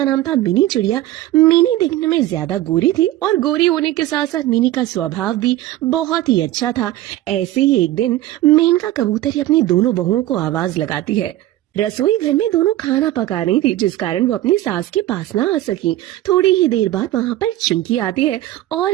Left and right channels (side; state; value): left; quieter; 14.9 dB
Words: नाम था मिनी चिड़िया। मिनी दिखने में ज्यादा गोरी थी और गोरी होने के साथ साथ मिनी का स्वभाव भी बहुत ही अच्छा था। ऐसे ही एक दिन मेनका कबूतरी अपनी दोनों बहुओं को आवाज लगाती है। रसोई घर में दोनों खाना पका रही थी, जिस कारण वो अपनी सास के पास ना आ सकी। थोड़ी ही देर बाद वहाँ पर चिंकी आती है और